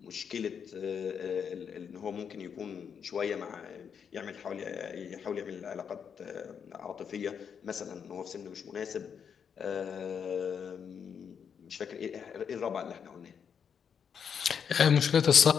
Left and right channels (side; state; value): right; quieter; 7.2 dB